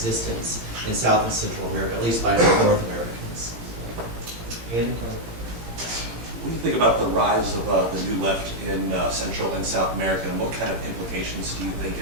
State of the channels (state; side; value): late; left; 17 ms